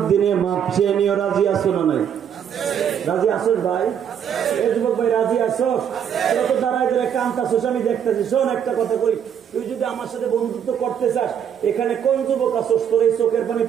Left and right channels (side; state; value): left; quieter; 8.5 dB